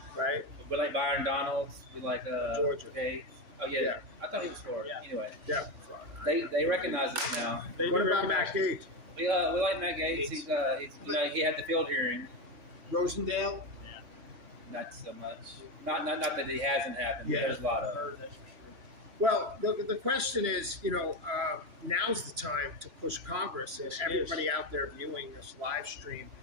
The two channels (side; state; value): left; late; 3.0 ms